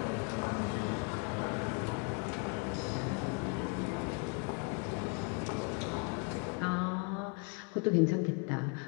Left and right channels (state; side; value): quieter; right; 35.6 dB